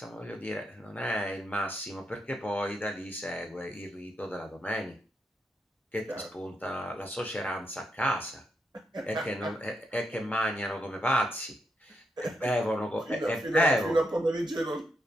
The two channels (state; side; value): normal; both; correlation 0.81